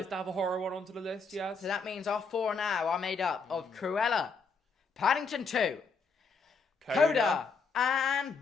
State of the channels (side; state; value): right; quieter; 4.4 dB